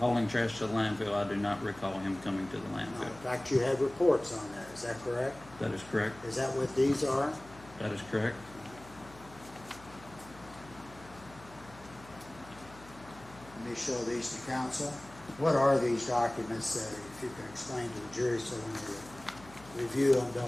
trash to the landfill, I do not recall him coming to the landfill. In fact, you had reports on that. Is that correct? That is correct. Is that what these are? That is correct. Let me show these to counsel. What are these documents that, if you can explain to the jury so when they review them,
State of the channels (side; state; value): left; noise; hum, 20 dB below the sound